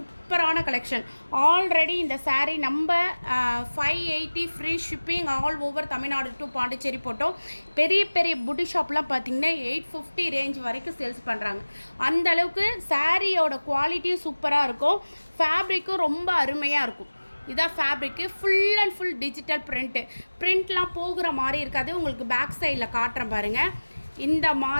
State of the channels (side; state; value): both; inverted; correlation -1.00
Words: கலெக்ஷன். ஆல்ரெடி இந்த சாரீ நம்ம 580 free shipping all over Tamil Nadu to Pondicherry போட்டோம். பெரிய பெரிய புட்டி ஷாப்லாம் பார்த்திங்கன்னா 850 ரேஞ்ச் வரைக்கும் சேல்ஸ் பண்ணுறாங்க. அந்தளவுக்கு சாரியோட குவாலிட்டியும் சூப்பராக இருக்கும், ஃபேப்ரிக்கும் ரொம்ப அருமையாக இருக்கும். இதான் fabric, full and full digital பிரிண்ட்லாம் போகிற மாதிரி இருக்காது. உங்களுக்கு பேக் சைடில் காட்டுறேன் பாருங்கள். இந்த